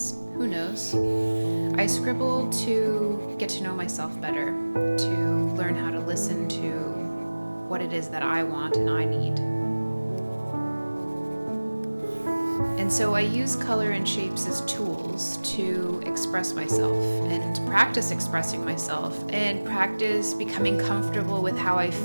Who knows? I scribble to get to know myself better, to learn how to listen to what it is that I want and I need. And so I use color and shapes as tools to express myself and practice expressing myself and practice becoming comfortable with how I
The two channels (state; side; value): inverted; both; correlation -1.00